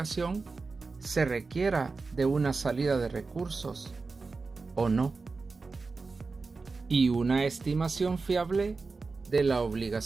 se requiera de una salida de recursos o no, y una estimación fiable de la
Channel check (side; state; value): left; quieter; 4.1 dB